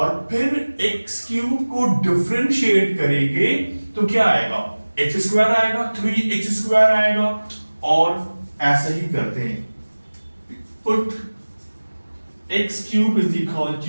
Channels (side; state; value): both; inverted; correlation -1.00